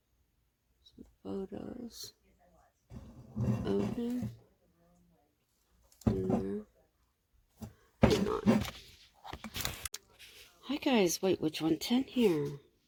Some photos of him. Hang on. Hi guys, White Witch 110 here.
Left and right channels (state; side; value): identical; both; correlation 1.00